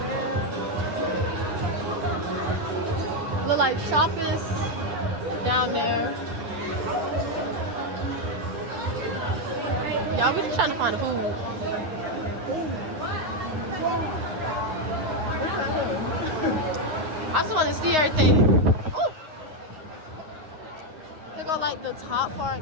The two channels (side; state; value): left; late; 9.7 ms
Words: Look like shoppers down there. Y'all, we just trying to find the food. I just want to see everything. Ooh. Here go like the top